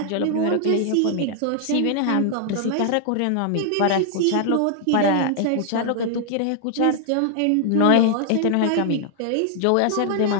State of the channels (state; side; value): different; both; correlation 0.00